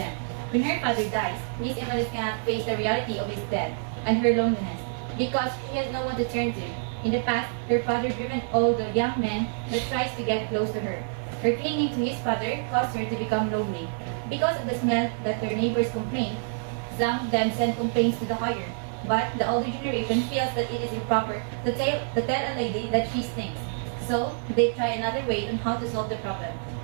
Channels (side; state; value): left; silent; 60 dB below the other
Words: When her father dies, Miss Emily cannot face the reality of his death and her loneliness because she has no one to turn to. In the past, her father driven all the young men that tries to get close to her. Her clinging to his father caused her to become lonely. Because of the smell that their neighbors complain, some of them send complaints to the higher. But the older generation feels that it is improper to tell a lady that she stinks. So, they try another way on how to solve the problem,